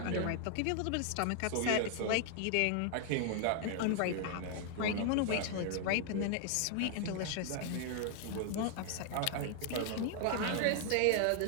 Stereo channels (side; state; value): both; different; correlation 0.00